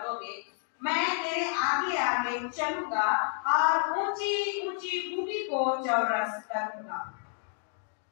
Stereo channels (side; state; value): right; silent; 58 dB below the other